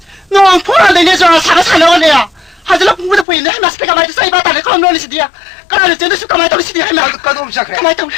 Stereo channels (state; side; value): drops out; right; at 3.2 s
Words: nó phun ra đây nè rồi sáng nó nè, hay là cũng được quên hay mà xì kamai say ba ta này không nói gì đi à, cái này là chuyện kamai tao đi xì đi hay mà, cái đom sắc